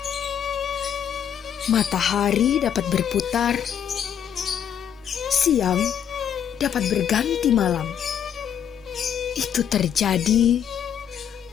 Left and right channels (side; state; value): right; quieter; 8.8 dB